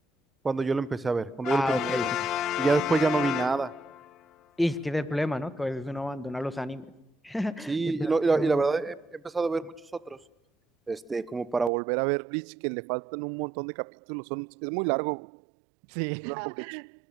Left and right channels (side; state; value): left; drops out; at 11.7 s